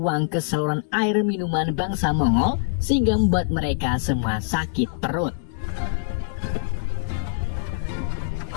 ke saluran air minuman bangsa Mongol sehingga membuat mereka semua sakit perut.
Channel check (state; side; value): silent; right; digital silence